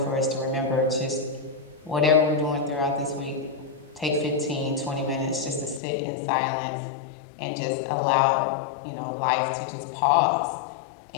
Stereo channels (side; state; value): right; drops out; at 5.8 s